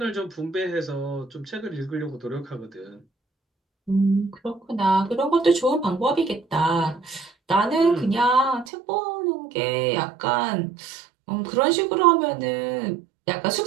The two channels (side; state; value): left; drops out; at 8.7 s